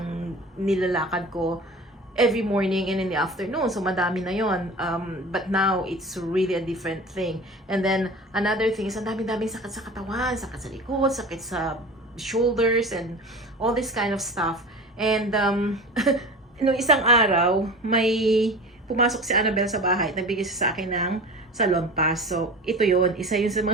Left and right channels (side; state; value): both; normal; correlation 0.36